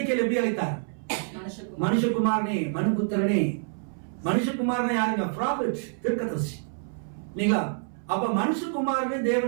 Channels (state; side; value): silent; left; 60 dB below the other